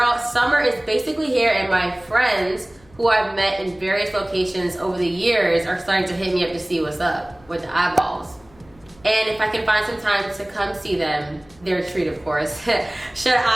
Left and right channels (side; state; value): left; noise; hum, 28 dB below the sound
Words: summer is basically here and my friends who I've met in various locations over the years are starting to hit me up to see what's up with the eyeballs. And if I can find some time to come see them, they're a treat, of course. Should